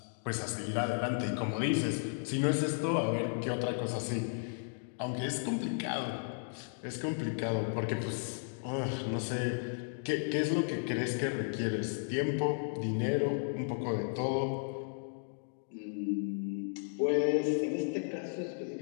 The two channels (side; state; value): right; silent; digital silence